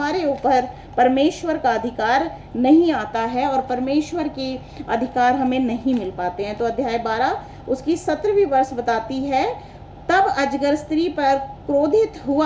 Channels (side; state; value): both; identical; correlation 1.00